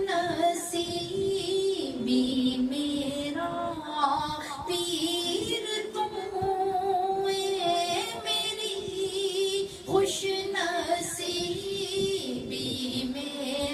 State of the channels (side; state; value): both; identical; correlation 1.00